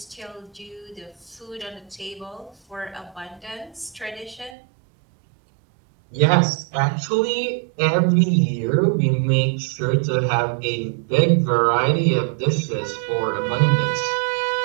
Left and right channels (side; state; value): left; drops out; at 4.5 s